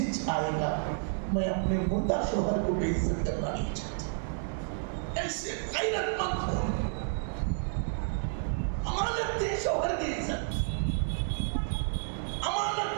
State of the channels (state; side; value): silent; left; digital silence